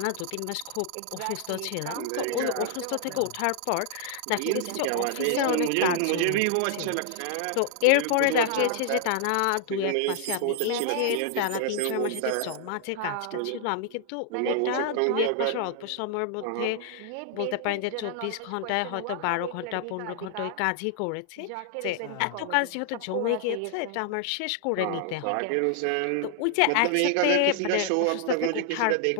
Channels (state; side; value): different; both; correlation 0.00